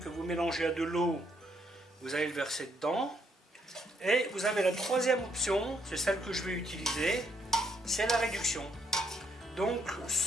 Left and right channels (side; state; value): both; normal; correlation 0.74